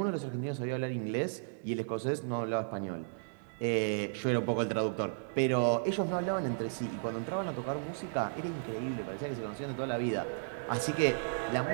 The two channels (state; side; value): silent; left; digital silence